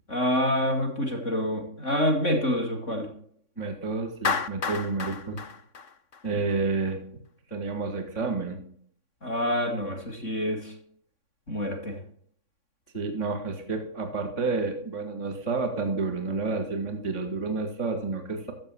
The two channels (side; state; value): right; late; 3.6 ms